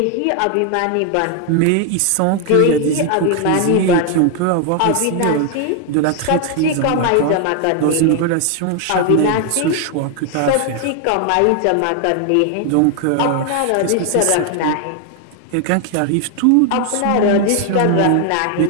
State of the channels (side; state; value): both; different; correlation 0.00